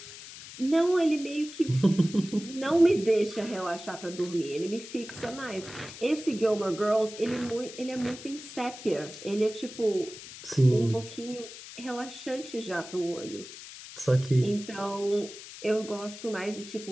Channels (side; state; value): left; noise; hiss, 14 dB below the sound